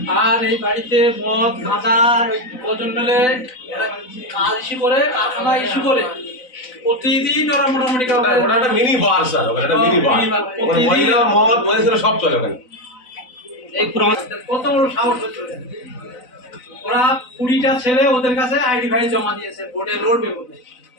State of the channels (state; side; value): late; right; 4.0 ms